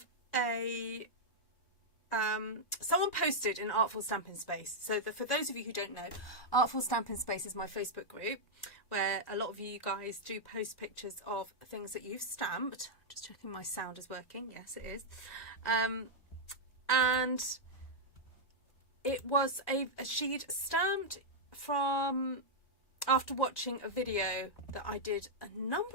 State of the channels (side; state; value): right; late; 1.1 ms